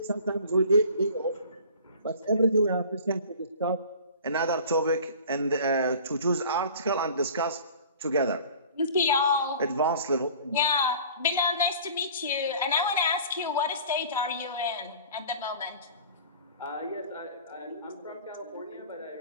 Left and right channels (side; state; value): both; inverted; correlation -0.45